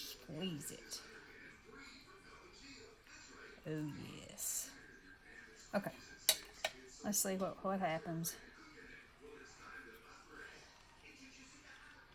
it. Oh yes. Okay. Let's see what happens.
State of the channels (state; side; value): identical; both; correlation 1.00